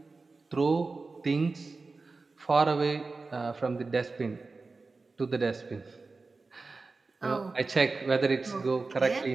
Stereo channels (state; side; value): quieter; left; 3.9 dB